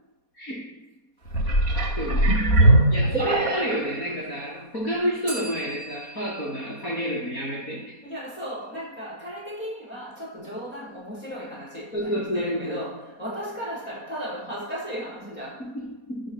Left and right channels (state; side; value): late; right; 4.2 ms